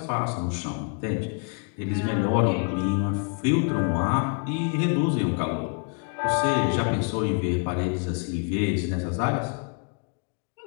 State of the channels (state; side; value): quieter; right; 39.8 dB